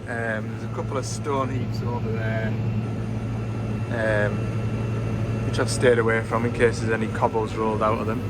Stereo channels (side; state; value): both; identical; correlation 1.00